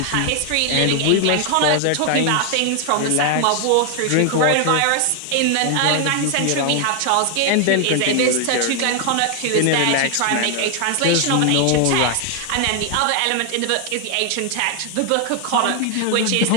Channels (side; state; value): both; different; correlation 0.01